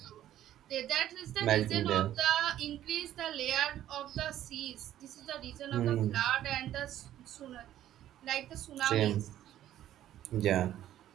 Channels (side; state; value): left; quieter; 12.3 dB